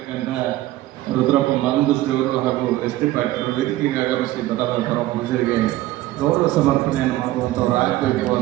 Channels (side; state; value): left; quieter; 16.0 dB